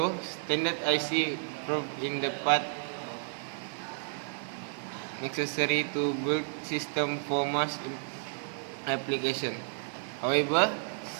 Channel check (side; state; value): left; silent; digital silence